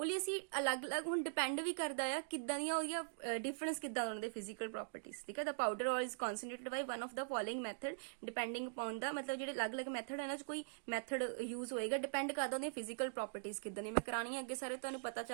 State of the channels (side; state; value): left; silent; digital silence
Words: ਲਈ ਅਸੀਂ ਅਲੱਗ-ਅਲੱਗ, ਹੁਣ ਡਿਪੈਂਡ ਵੀ ਕਰਦਾ ਆ ਕਿੱਦਾਂ ਦੀਆਂ ਉਹਦੀਆਂ ਡਿਫਰੈਂਸ ਕਿੱਦਾਂ ਉਹਨਾਂ ਦੇ ਫਿਜ਼ੀਕਲ ਪ੍ਰੋਪਰਟੀਜ਼, ਠੀਕ ਹੈ। The powder ore is concentrated by one of the following method depending upon the, ਮਤਲਬ ਜਿਹੜੇ ਅਲੱਗ-ਅਲੱਗ ਮੈਥਡ ਇਹਨਾਂ 'ਚ ਕੋਈ ਮੈਥਡ ਯੂਜ਼ ਹੋਏਗਾ, ਡਿਪੈਂਡ ਕਰਦਾ ਉਹਦੀਆਂ ਫਿਜ਼ੀਕਲ ਪ੍ਰੋਪਰਟੀਜ਼ ਕਿੱਦਾਂ ਦੀਆਂ। ਮੈਂ ਕਰਾਣੀ ਅੱਗੇ ਸਾਰੇ ਤੁਹਾਨੂੰ ਪਤਾ